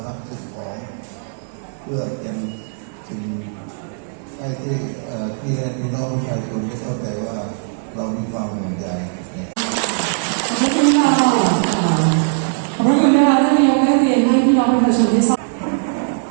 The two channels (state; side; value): silent; left; digital silence